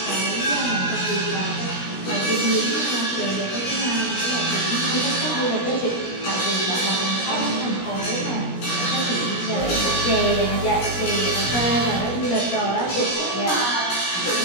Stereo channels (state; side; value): late; right; 17 ms